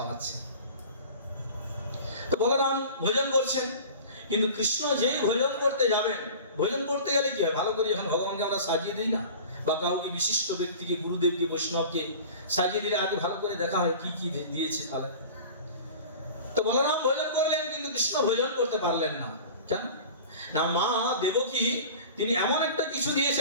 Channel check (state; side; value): inverted; both; correlation -0.39